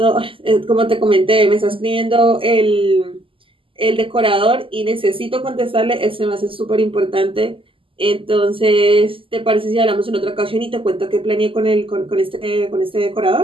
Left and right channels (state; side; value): late; left; 0.25 ms